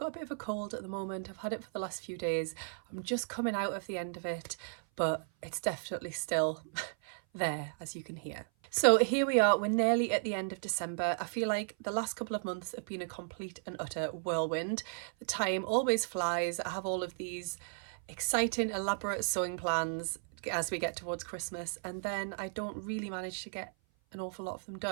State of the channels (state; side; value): silent; left; 54 dB below the other